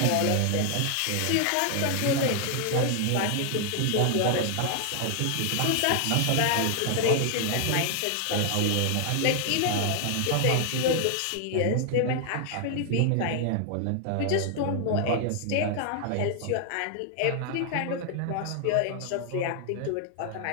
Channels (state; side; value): different; both; correlation 0.00